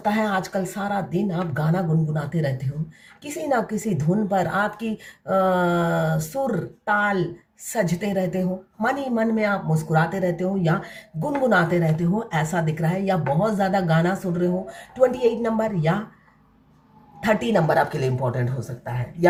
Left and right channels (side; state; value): both; identical; correlation 1.00